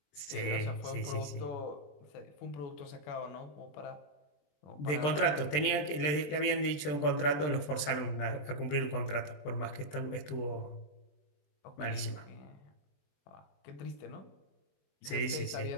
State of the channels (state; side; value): late; right; 21 ms